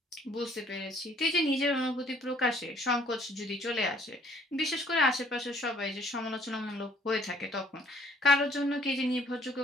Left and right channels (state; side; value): normal; both; correlation 0.60